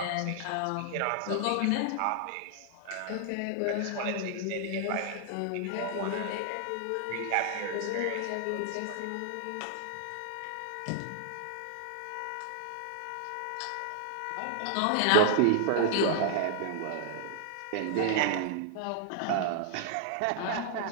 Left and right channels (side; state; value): both; different; correlation -0.01